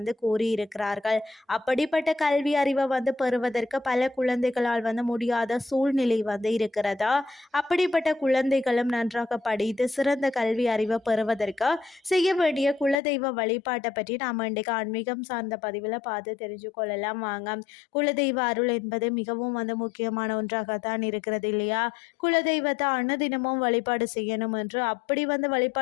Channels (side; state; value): right; drops out; at 13.0 s